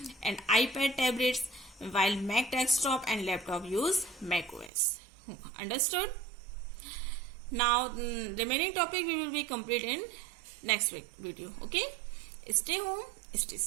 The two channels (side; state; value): left; drops out; at 4.7 s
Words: And iPad tablets, while Mac desktop and laptop use Mac OS. Understood? Now, remaining topic we will be complete in next week video, okay? Stay home, stay